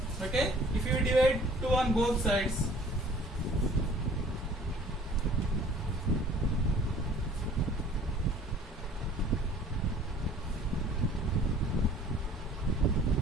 Okay, if you divide 2 on both sides,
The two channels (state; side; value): normal; both; correlation 0.51